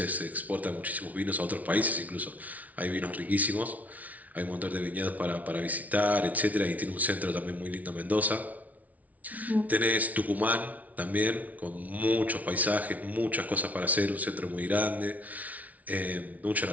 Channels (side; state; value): left; late; 0.072 ms